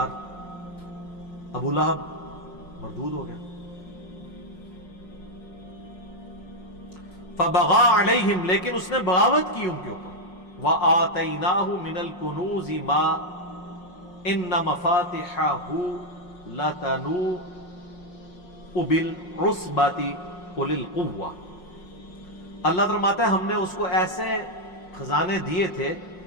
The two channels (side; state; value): right; late; 5.5 ms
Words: ابو لہب مردود ہو گیا. فبغى علیہم، لیکن اس نے بغاوت کی ان کے اوپر. وآتیناہ من الکنوز ما ان مفاتحہ لتنوء بالعصبۃ اولي القوہ. اللہ فرماتا ہے ہم نے اس کو ایسے خزانے دیے تھے